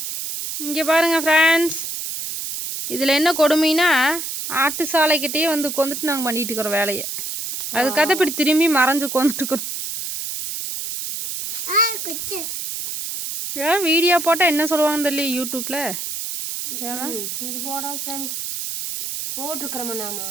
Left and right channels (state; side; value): noise; right; hiss, 5 dB below the sound